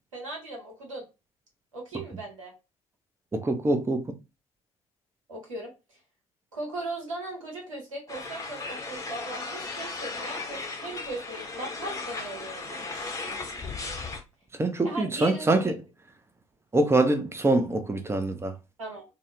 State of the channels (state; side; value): normal; both; correlation 0.68